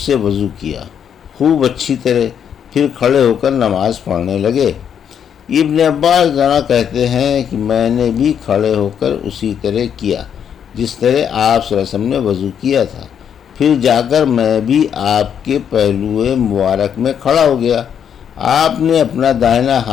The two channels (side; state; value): right; quieter; 8.4 dB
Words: سے وضو کیا خوب اچھی طرح، پھر کھڑے ہو کر نماز پڑھنے لگے۔ ابن عباس ذرا کہتے ہیں کہ میں نے بھی کھڑے ہو کر اسی طرح کیا جس طرح آپ صلی اللہ علیہ وسلم نے وضو کیا تھا، پھر جا کر میں بھی آپ کے پہلو مبارک میں کھڑا ہو گیا۔ آپ نے اپنا دائنا